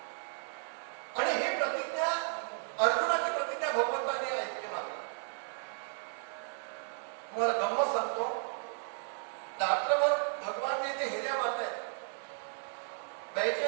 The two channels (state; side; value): silent; left; 55 dB below the other